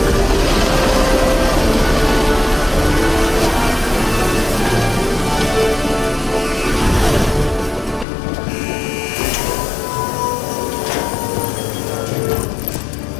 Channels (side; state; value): right; drops out; at 8.1 s